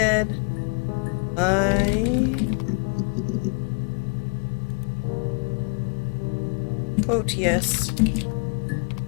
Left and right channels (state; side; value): quieter; right; 35.0 dB